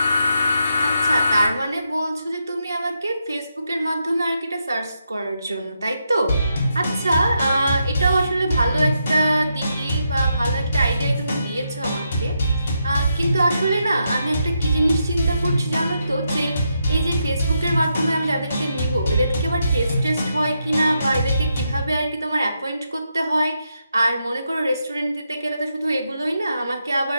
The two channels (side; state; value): both; inverted; correlation -0.82